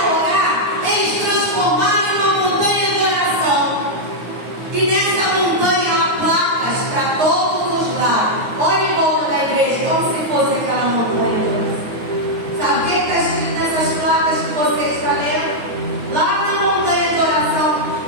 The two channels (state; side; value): late; left; 9.5 ms